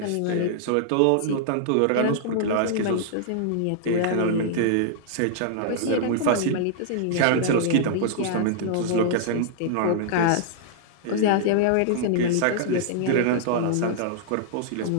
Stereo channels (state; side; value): different; both; correlation -0.01